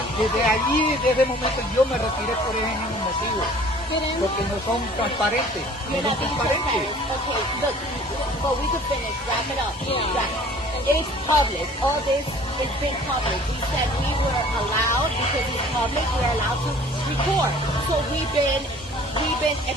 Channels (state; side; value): normal; both; correlation 0.50